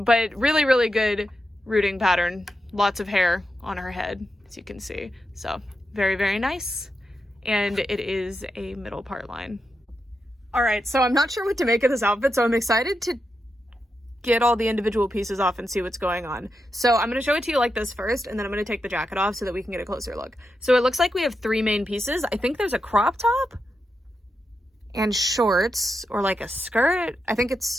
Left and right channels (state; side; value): normal; both; correlation 0.87